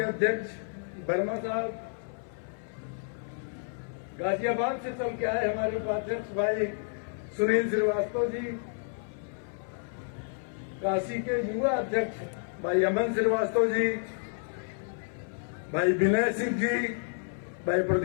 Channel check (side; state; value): right; silent; 58 dB below the other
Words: अध्यक्ष वर्मा साहब, गाजियाबाद से चल के आए हमारे उपाध्यक्ष भाई सुनील श्रीवास्तव जी, काशी के युवा अध्यक्ष भाई अमन श्रीवास्तव जी, भाई विनय सिंह जी, भाई